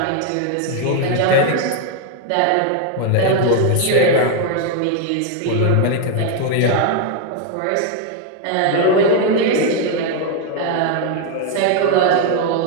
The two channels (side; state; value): both; different; correlation 0.00